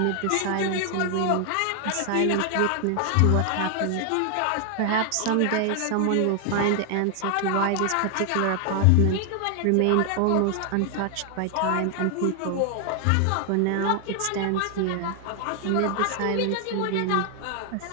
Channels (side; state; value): both; different; correlation 0.00